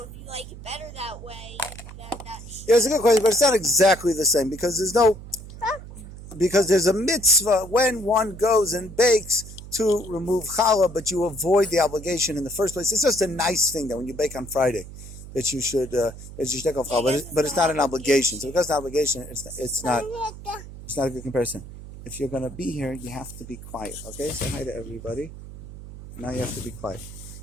you like it better that way, then that should... Yeah, it's a good question, but it's not exactly the same, because there's a mitzvah when one goes and bakes to remove challah, but you avoid the obligation in the first place. It's just a nice thing that when you bake on Friday, that you should take off challah, but it's not an obligation. So because it's an obligation, it's not a good comparison. If you're going to be here, you have to be quiet. Okay, say hi to everybody. Now you have to be quiet.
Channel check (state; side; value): noise; right; hum, 14 dB below the sound